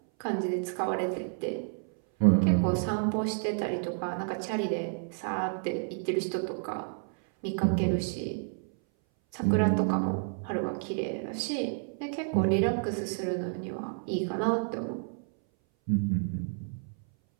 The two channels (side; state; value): left; silent; 58 dB below the other